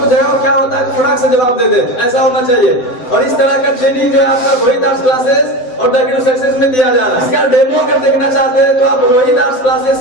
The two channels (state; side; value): late; right; 7.9 ms